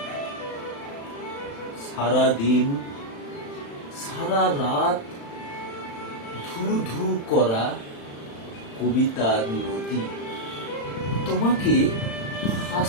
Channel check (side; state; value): right; late; 35 ms